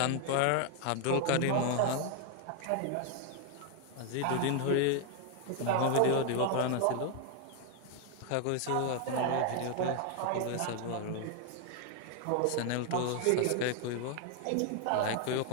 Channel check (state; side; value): different; both; correlation 0.00